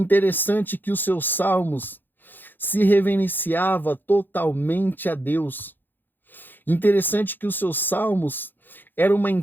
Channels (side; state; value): right; late; 0.091 ms